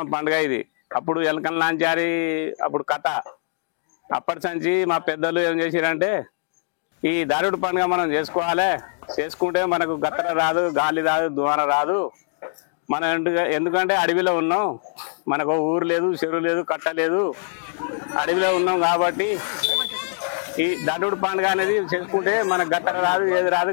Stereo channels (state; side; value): silent; right; digital silence